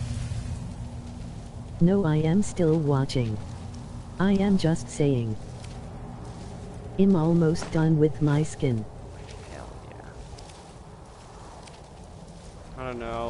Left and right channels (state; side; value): identical; both; correlation 1.00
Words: No, I am still watching. I am just saying. I'm almost done with my skin. Hell yeah. I don't